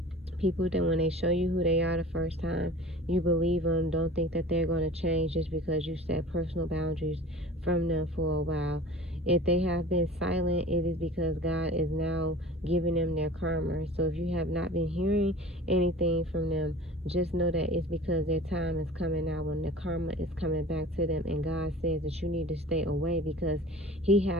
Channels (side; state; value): both; normal; correlation 0.40